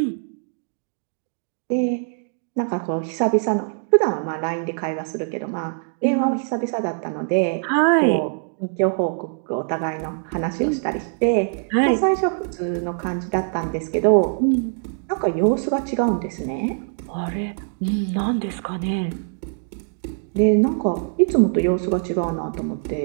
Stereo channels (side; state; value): left; silent; digital silence